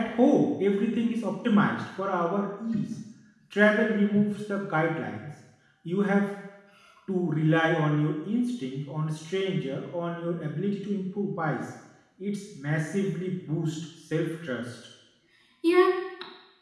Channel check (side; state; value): both; identical; correlation 1.00